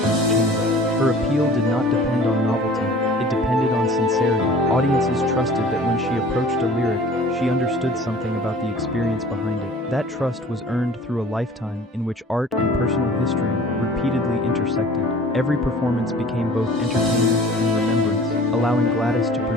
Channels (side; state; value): both; normal; correlation 0.46